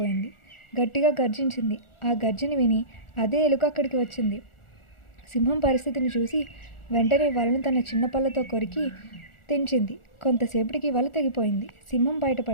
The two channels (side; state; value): right; late; 1.4 ms